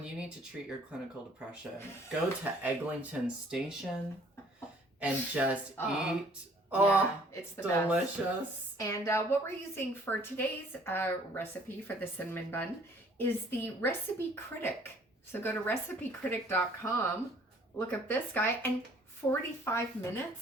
you need to treat your clinical depression, go to Eglinton Station and just eat. Yeah, it's the delicious. Best. And what we're using for today's recipe for the cinnamon bun is the Recipe Critic. So go to recipecritic.com, look up this guy, and 45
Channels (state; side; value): normal; both; correlation 0.57